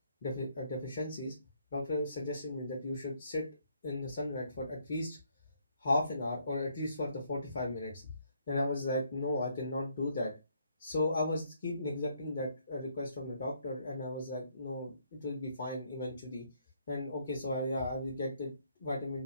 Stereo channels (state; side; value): inverted; both; correlation -0.69